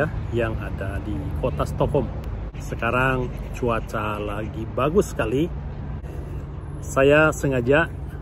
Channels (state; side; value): identical; both; correlation 1.00